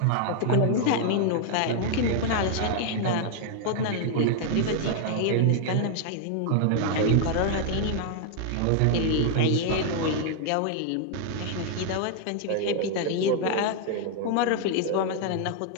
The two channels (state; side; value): different; both; correlation 0.00